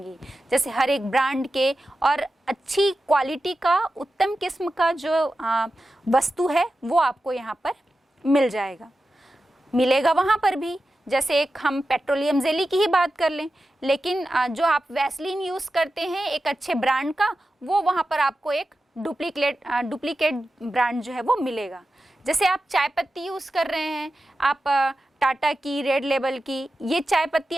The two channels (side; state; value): both; normal; correlation 0.92